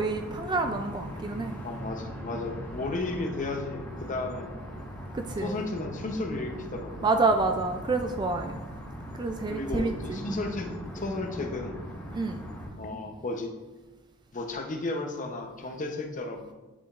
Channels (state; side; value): normal; both; correlation 0.42